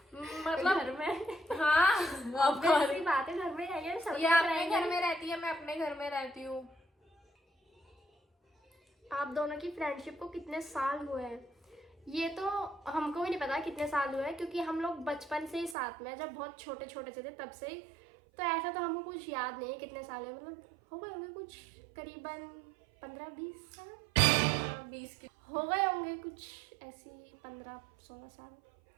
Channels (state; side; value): drops out; left; at 15.8 s